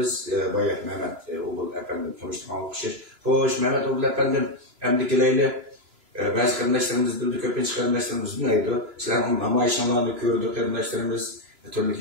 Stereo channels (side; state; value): left; late; 2.9 ms